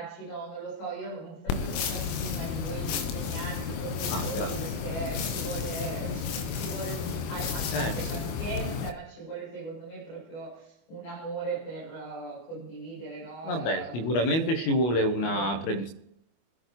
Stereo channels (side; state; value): right; late; 25 ms